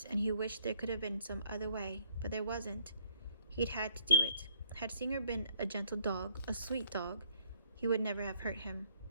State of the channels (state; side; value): inverted; both; correlation -0.66